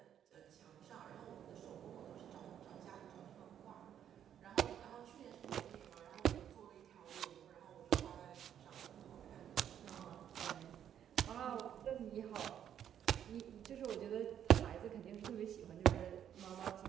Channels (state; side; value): quieter; left; 9.7 dB